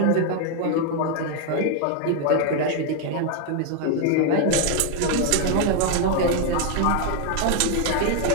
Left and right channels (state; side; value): different; both; correlation 0.00